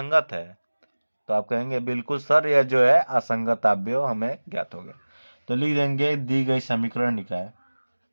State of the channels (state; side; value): inverted; both; correlation -1.00